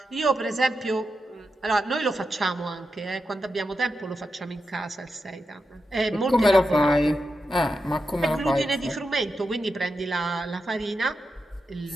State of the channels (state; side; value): normal; both; correlation 0.88